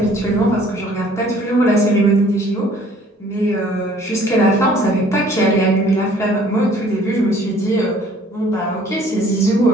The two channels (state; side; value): normal; both; correlation 0.56